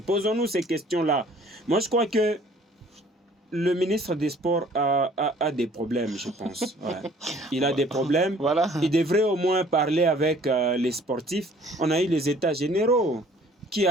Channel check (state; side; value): normal; both; correlation 0.55